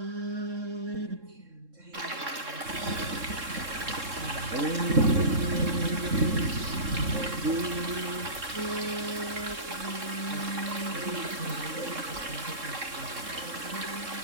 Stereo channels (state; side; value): late; left; 3.7 ms